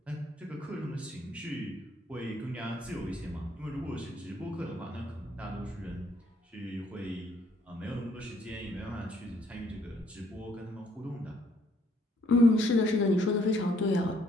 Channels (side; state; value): both; normal; correlation 0.67